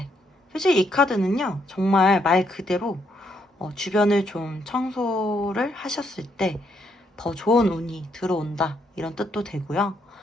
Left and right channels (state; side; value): normal; both; correlation 0.75